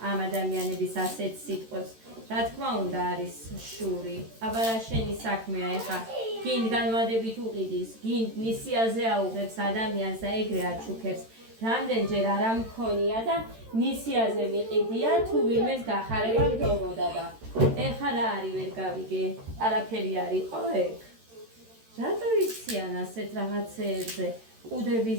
ამ ადამიანების ასეთ სიტყვებს, რა თქმა უნდა არის შური. აბა რა შენი საქმეა ეხა გინ განვადებით უყიდის, გინ ნისიაზე აუღებს ადამიანს და ეგრე აჩუქებს. რამდენჯერ არ ამქონია და ნისიაზე მიყიდია თუ ვინმეს გახარება მდომოდა და ეხა რა არის ვერ გავიგე, არაფერი არ იყო ეგ. რატო იციან ასეთ რაღაცეებზე?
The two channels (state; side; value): late; left; 13 ms